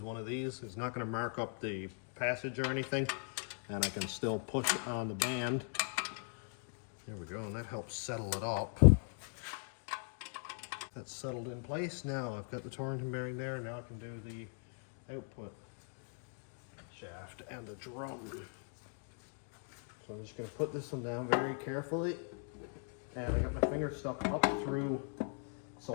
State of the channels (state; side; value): silent; right; 51 dB below the other